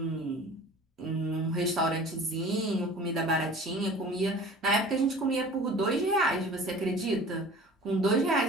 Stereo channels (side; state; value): both; normal; correlation 0.43